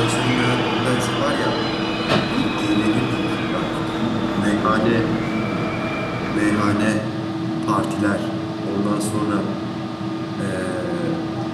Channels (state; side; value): identical; both; correlation 1.00